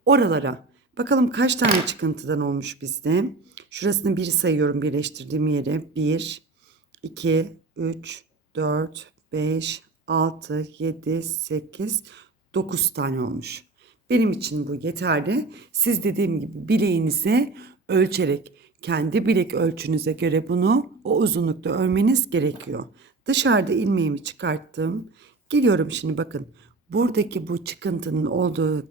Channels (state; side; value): quieter; left; 3.6 dB